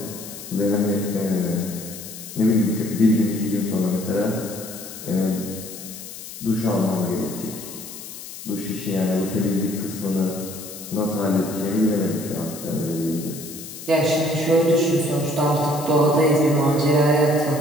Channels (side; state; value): left; noise; hiss, 12 dB below the sound